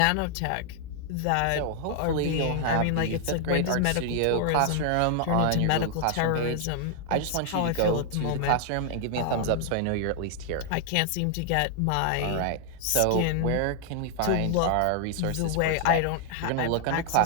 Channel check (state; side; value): different; both; correlation 0.00